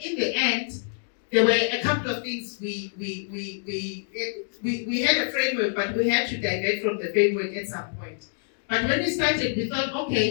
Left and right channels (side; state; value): right; silent; digital silence